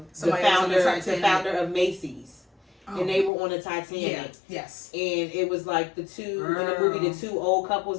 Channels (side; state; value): right; drops out; at 3.3 s